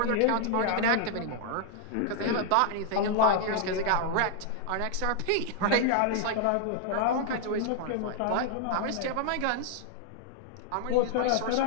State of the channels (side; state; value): both; different; correlation 0.00